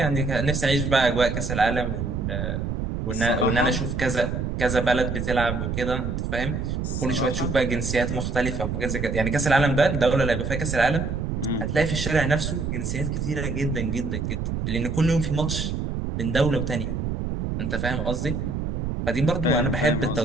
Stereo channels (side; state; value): right; noise; rumble, 3 dB below the sound